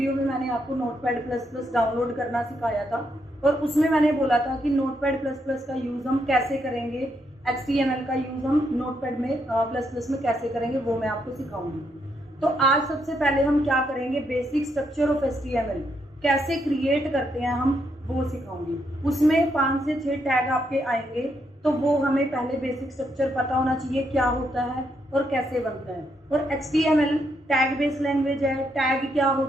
में मैंने आपको नोटपैड प्लस प्लस डाउनलोड करना सिखाया था और उसमें मैंने बोला था कि नोटपैड प्लस प्लस का यूज़ हम कैसे करेंगे, HTML का यूज़ हम नोटपैड में प्लस प्लस में कैसे करेंगे वो मैं आपको सिखाऊंगी। तो आज सबसे पहले हम क्या करेंगे, बेसिक स्ट्रक्चर ऑफ HTML कैसे क्रिएट करते हैं हम वो सिखाऊंगी। उसमें 5 से 6 टैग आपके आएंगे, तो वो हमें पहले बेसिक स्ट्रक्चर पता होना चाहिए क्या होता है और कैसे बनता है। और HTML टैग बेस लैंग्वेज है, टैग क्या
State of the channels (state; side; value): normal; both; correlation 0.78